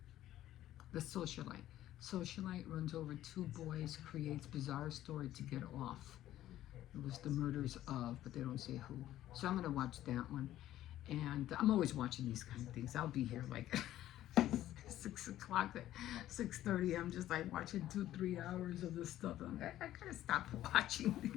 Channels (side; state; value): right; quieter; 13.4 dB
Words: The socialite. Socialite runs over two boys, creates bizarre story to get off. It was the murders of, but they don't say who. So I'm gonna watch that one. And I'm always watching these kind of things. I'll be here like 6 o'clock, 6:30. I'm just like watching 2-3 hours of this stuff. I'm like, I gotta stop watching